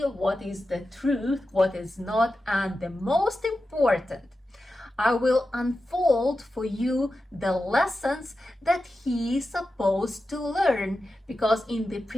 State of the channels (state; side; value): normal; both; correlation 0.91